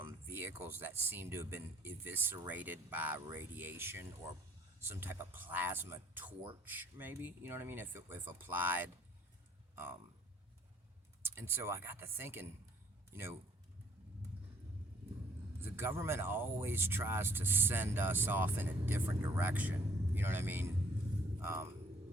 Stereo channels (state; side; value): normal; both; correlation 0.60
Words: vehicles that seemed to have been eviscerated by radiation or some type of plasma torch, maybe, you know what I mean, if applied. And so I got to thinking, you know, the government always tries to send us off in a different direction, you know what I mean,